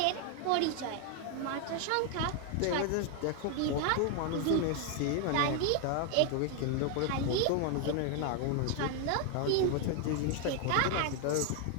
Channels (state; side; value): different; both; correlation 0.00